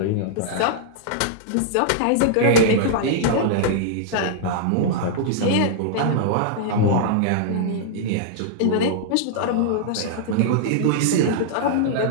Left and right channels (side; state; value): both; different; correlation -0.01